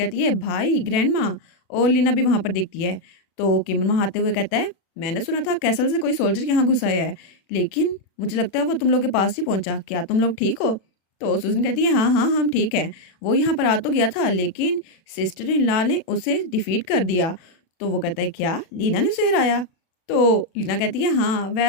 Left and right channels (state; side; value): late; right; 36 ms